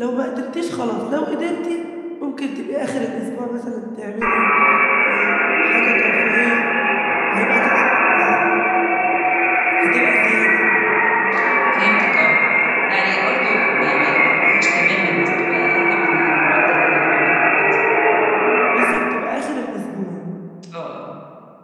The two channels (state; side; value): identical; both; correlation 1.00